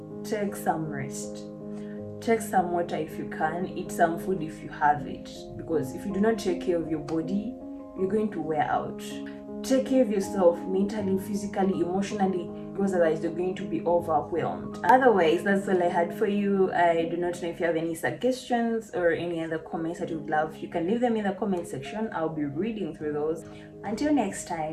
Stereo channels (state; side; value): identical; both; correlation 1.00